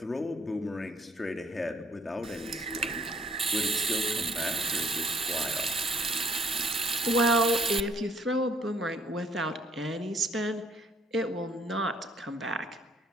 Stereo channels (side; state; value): both; normal; correlation 0.63